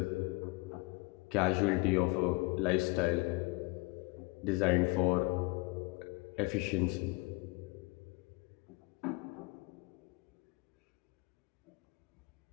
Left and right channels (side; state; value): right; quieter; 25.9 dB